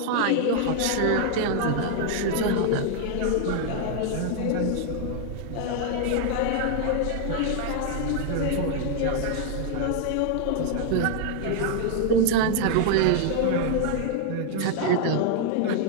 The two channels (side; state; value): both; different; correlation 0.00